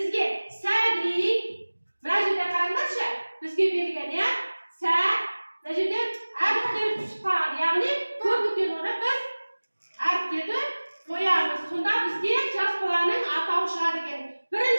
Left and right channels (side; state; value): both; inverted; correlation -1.00